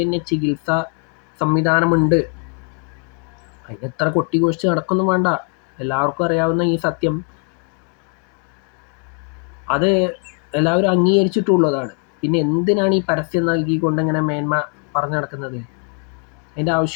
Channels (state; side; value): quieter; right; 37.4 dB